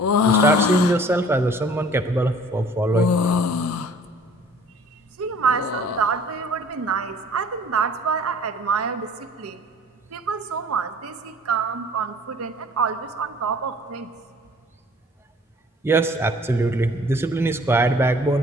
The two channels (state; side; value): normal; both; correlation 0.51